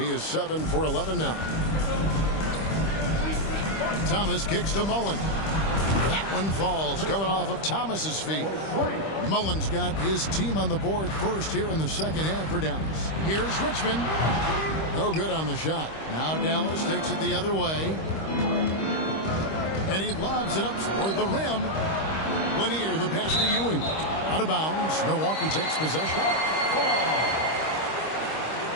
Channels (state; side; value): late; right; 25 ms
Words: is 7 for 11 now. Thomas kicks to Mullen. That one falls, coming off of Thomas's feet. Mullen's got his team on the board first here in the second half for Dallas. Here's Richmond. No good on the shot. Now Dallas takes it the other way. And he lobs it up toward the rim. Lanier, the pass to Ewing. Out of bounds. Milwaukee takes possession.